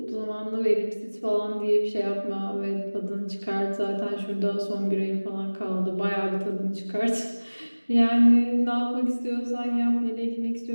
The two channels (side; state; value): both; inverted; correlation -1.00